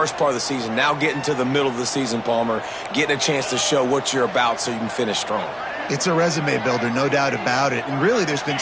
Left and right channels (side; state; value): both; identical; correlation 1.00